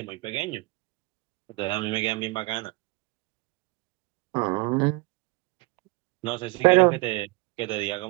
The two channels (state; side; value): quieter; left; 24.7 dB